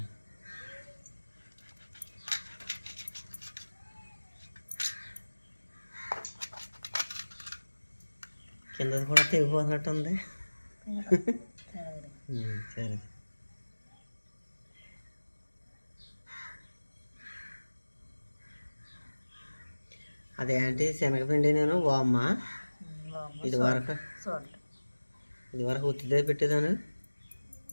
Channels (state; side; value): inverted; both; correlation -1.00